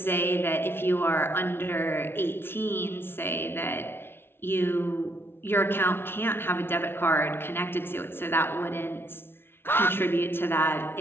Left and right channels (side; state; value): right; late; 0.11 ms